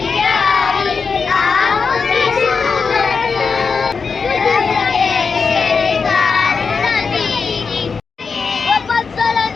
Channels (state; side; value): quieter; right; 5.2 dB